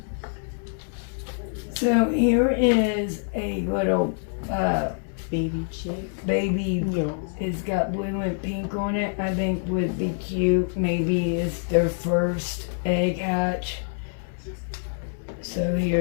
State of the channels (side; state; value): right; silent; digital silence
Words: So here is a little Baby chick. baby. Yeah. It's got blue and pink on it. I think would be cute. Maybe it's their first egg hatch. So